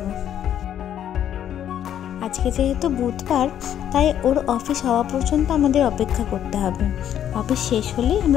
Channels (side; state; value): right; quieter; 10.3 dB